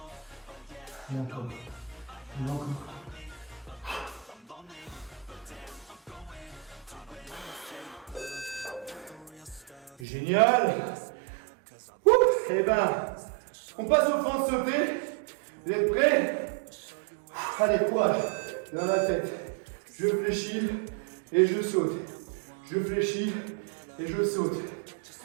Et encore. Et encore. Génial. Et ben, on passe aux fentes sautées. Vous êtes prêts? Allez, courage. Dans la tête. Je fléchis et je saute. Je fléchis et je saute.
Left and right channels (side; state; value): left; drops out; at 10.1 s